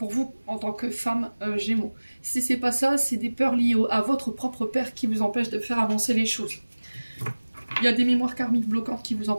vous, en tant que femme Gémeaux. Si c'est pas ça, c'est des peurs liées à votre propre père qui vous empêchent de faire avancer les choses. Il y a des mémoires karmiques bloquantes qui vous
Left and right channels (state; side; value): inverted; both; correlation -1.00